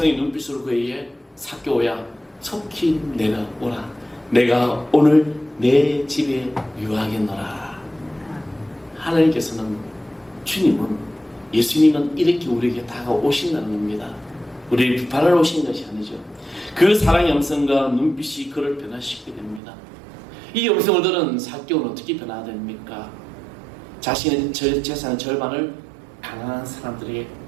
눈빛으로 그에게 삭개오야 속히 내려오라. 내가 오늘 내 집에 유하겠노라. 하나님께서는, 주님은, 예수님은 이렇게 우리에게 다가오신다는 겁니다. 우리를 비판하러 오신 것이 아니죠. 그 사랑의 음성과 눈빛이 그를 변화시키게 됩니다. 이 음성을 들은 삭개오는 어떻게 변화됩니까? 자신의 재산의 절반을 가난한 사람들에게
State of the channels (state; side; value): drops out; left; at 19.6 s